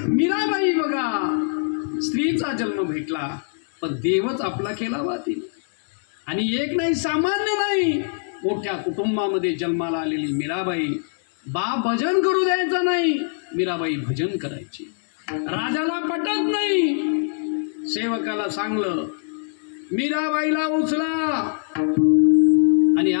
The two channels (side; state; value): right; silent; digital silence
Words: मीराबाई बघा, स्त्रीचा जन्म भेटला पण देवच आपला केला बा तिने. आणि एक नाही, सामान्य नाही, मोठ्या कुटुंबामध्ये जन्माला आलेली मीराबाई. बाप भजन करू द्यायचं नाही, मीराबाई भजन करायची. राजाला पटत नाही, सेवकाला सांगलं, मीराबाईला उचला आणि